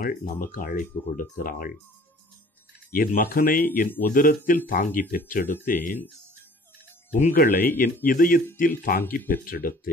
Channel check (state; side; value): normal; both; correlation 0.51